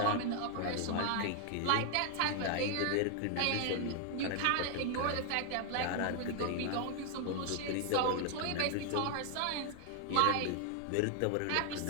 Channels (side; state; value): both; different; correlation 0.00